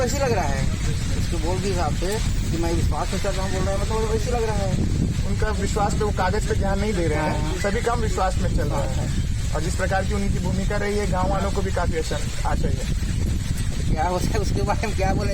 लग रहा है, उसके बोल के हिसाब से कि मैं विश्वास में चल रहा हूँ बोल रहा है, मतलब वैसे लग रहा है। उनका विश्वास पे वो कागज पे ध्यान नहीं दे रहे हैं, सभी काम विश्वास में चल रहा है। और जिस प्रकार की उनकी भूमिका रही है, गाँव वालों को भी काफी अच्छा चाहिए। क्या होता है उसके बारे में क्या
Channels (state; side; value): identical; both; correlation 1.00